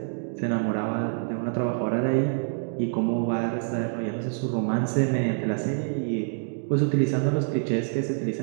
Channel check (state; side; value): silent; left; digital silence